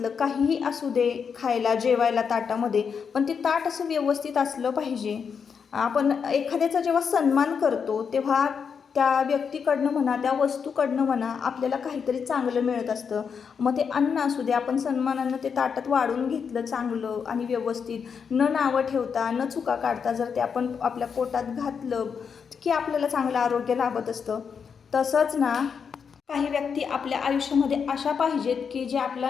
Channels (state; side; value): quieter; right; 6.4 dB